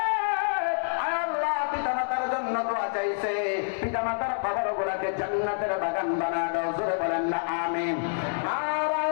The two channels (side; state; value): right; silent; 60 dB below the other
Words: আল্লাহ পিতা মাতার জন্য দোয়া চাইছে, পিতা মাতার কবরগুলোকে জান্নাতের বাগান বানায় দাও, জোরে বলেন না আমিন।